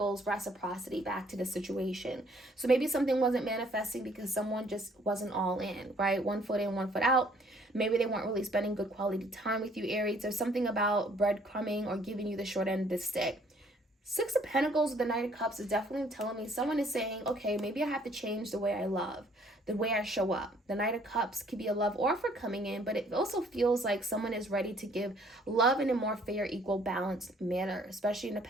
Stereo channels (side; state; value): both; normal; correlation 0.61